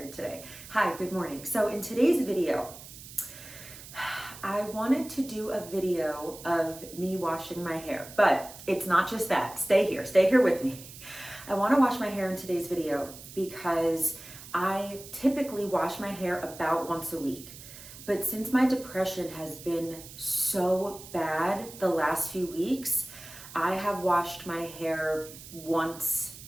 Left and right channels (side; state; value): right; noise; hiss, 16 dB below the sound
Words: today. Hi, good morning. So in today's video, I wanted to do a video of me washing my hair, but it's not just that. Stay here with me. I want to wash my hair in today's video because I typically wash my hair about once a week. But since my depression has been so bad the last few weeks, I have washed my hair once